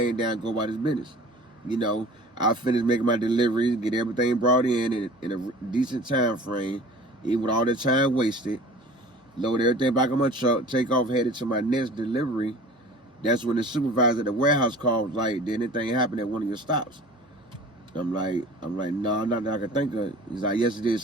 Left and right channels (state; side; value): normal; both; correlation 0.43